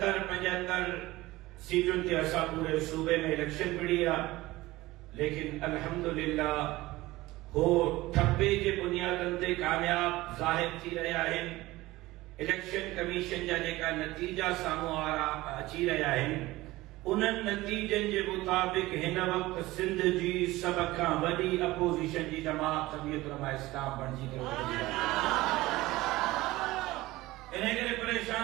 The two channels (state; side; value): quieter; left; 18.7 dB